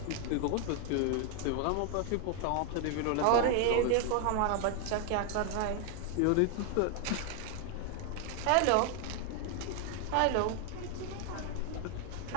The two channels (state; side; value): different; both; correlation 0.00